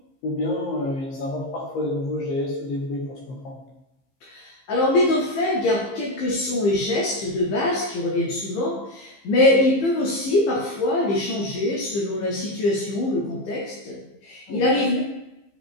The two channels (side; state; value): right; late; 15 ms